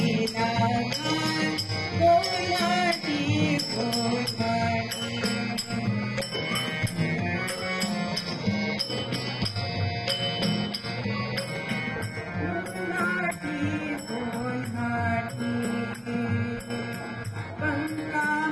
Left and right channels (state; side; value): identical; both; correlation 1.00